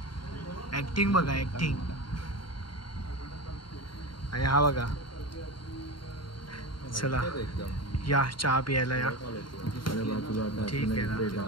ॲक्टिंग बघा, ॲक्टिंग. आणि हा बघा, चला या चहा प्यायला या. ठीक आहे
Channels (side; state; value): right; late; 0.72 ms